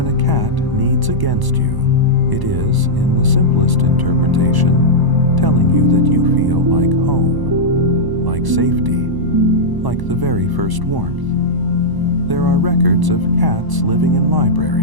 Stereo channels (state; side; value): late; left; 1.0 ms